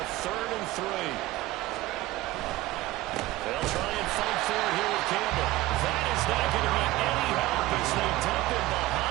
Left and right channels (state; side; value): quieter; left; 17.6 dB